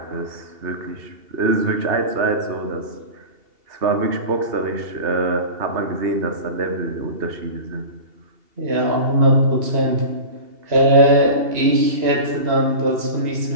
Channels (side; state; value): left; late; 2.7 ms